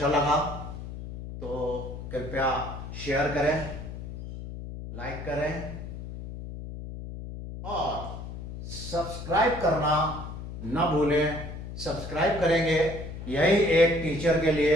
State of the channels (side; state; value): left; noise; hum, 9 dB below the sound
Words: लगा तो कृपया शेयर करें, लाइक करें और सब्सक्राइब करना न भूलें। सब्सक्राइब करेंगे, यही एक टीचर के